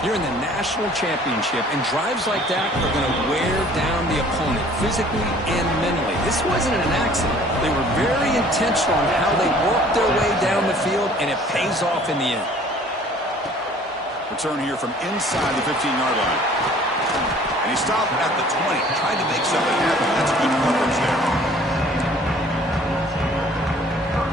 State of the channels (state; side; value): normal; both; correlation 0.53